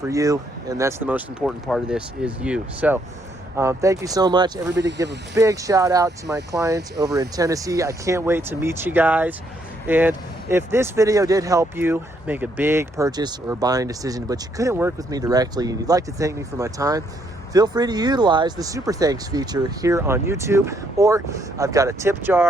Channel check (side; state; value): both; normal; correlation 0.72